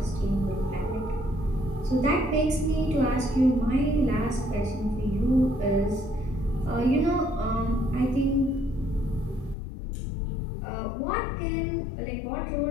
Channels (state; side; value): drops out; right; at 9.6 s